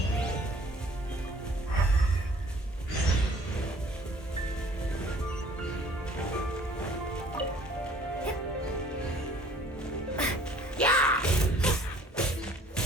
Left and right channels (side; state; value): both; normal; correlation 0.55